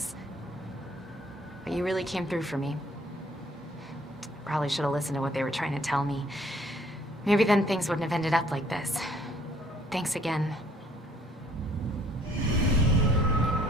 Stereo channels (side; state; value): both; normal; correlation 0.61